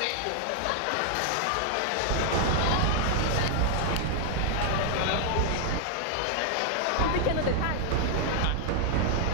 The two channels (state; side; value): different; both; correlation -0.01